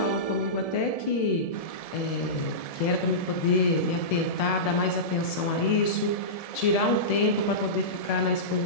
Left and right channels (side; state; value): right; late; 1.7 ms